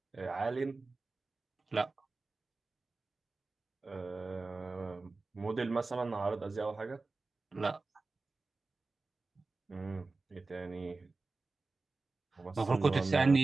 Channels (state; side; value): quieter; left; 3.7 dB